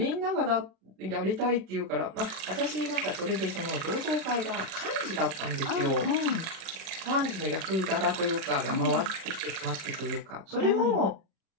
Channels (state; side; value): late; left; 36 ms